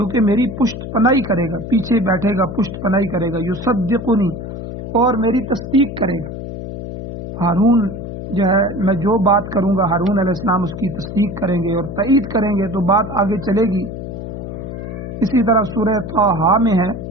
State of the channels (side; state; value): left; noise; hum, 8 dB below the sound